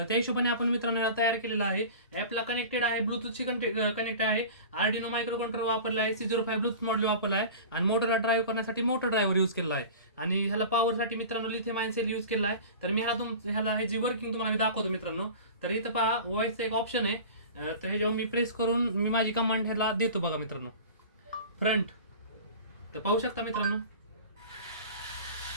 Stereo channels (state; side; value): inverted; both; correlation -0.37